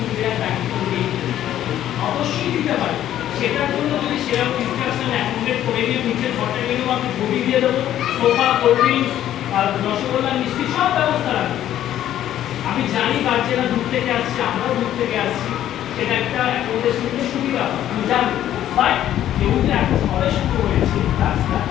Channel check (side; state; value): right; quieter; 11.9 dB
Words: দায়িত্ব নেই, অবশ্যই দিতে পারে। সেটার জন্য যদি সেরকম ইনস্ট্রাকশন অ্যাকোমোডেট করে নিয়ে নিচের ঘরটা গেলেও আমি ঘড়ি দিয়ে দেবো, সোফা, কোল্ড ড্রিঙ্কস আর রসগোল্লা, মিষ্টি সব ব্যবস্থা রাখবো। আমি জানি গার্জেনরা দূর থেকে আসছে, আমরাও দূর থেকে আসছি, সেটা একটা অ্যাকোমোডেশন সুবিধা আমি জানি। বাট যেহেতু এখন সবে শুরু হয়েছে কাজটা,